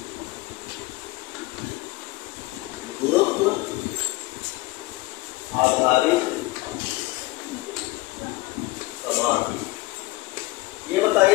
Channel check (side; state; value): right; quieter; 20.0 dB